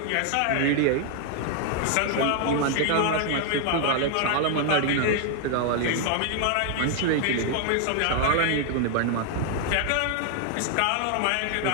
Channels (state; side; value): different; both; correlation 0.00